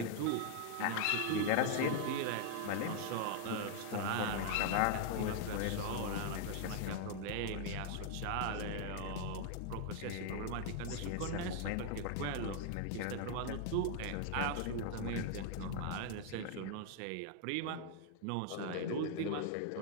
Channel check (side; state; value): both; different; correlation 0.00